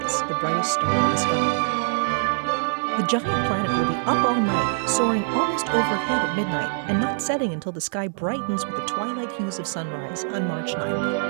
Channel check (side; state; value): left; silent; 58 dB below the other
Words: the brightest star in the sky. The giant planet will be up all night, soaring almost overhead at midnight, and not setting until the sky brightens with the twilight hues of sunrise on March 9th.